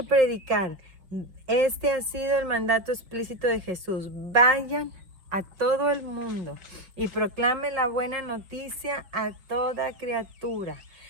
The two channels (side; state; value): left; late; 5.5 ms